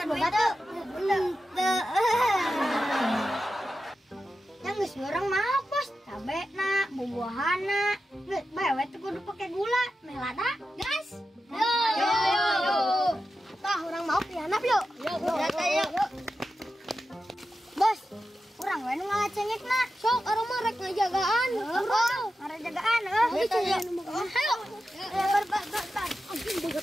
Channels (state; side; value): normal; both; correlation 0.91